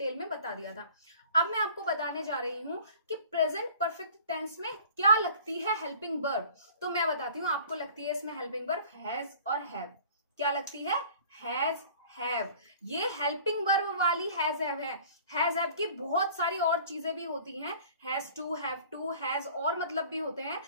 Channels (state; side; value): inverted; both; correlation -0.48